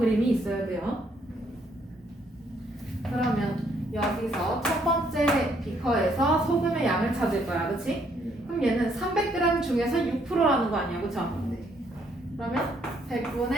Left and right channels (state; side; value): normal; both; correlation 0.69